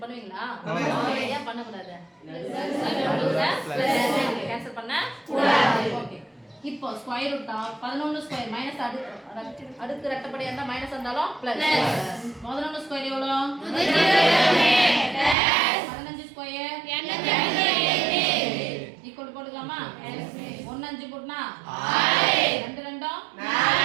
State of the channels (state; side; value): drops out; left; at 15.4 s